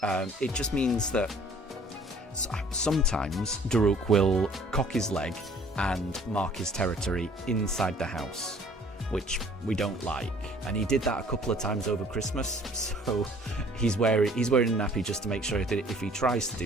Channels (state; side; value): normal; both; correlation 0.55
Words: It just means that sometimes Daruk will cock his leg and mark his territory inside the house, which we don't like. And he did that a couple of times over Christmas, so he's wearing a nappy just to make sure that if he tries to